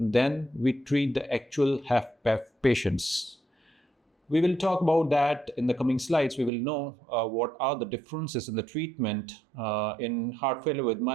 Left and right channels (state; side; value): drops out; left; at 6.5 s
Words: we treat the actual HFpEF patients. We will talk about that in the coming slides. We will know what are the differences in the treatment in heart failure with